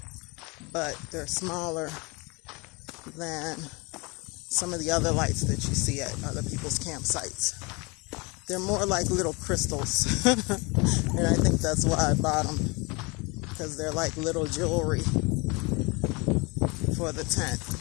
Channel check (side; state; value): right; quieter; 27.9 dB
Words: but they're smaller than some of the other lights that you see at other people's campsites. They're more like little crystals. And I think that's why I bought them, because they're like little jewelry for the tent.